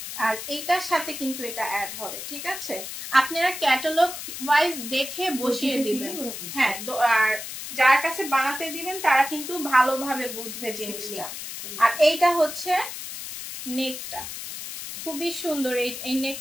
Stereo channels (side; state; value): left; noise; hiss, 8 dB below the sound